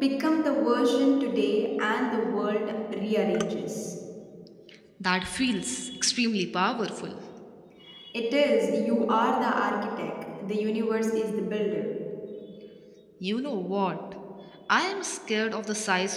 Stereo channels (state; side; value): identical; both; correlation 1.00